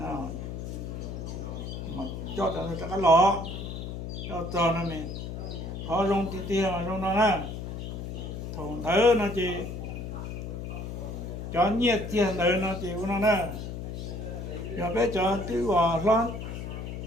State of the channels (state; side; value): noise; left; hum, 6 dB below the sound